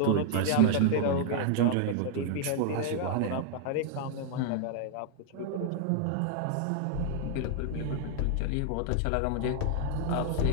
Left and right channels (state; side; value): different; both; correlation 0.00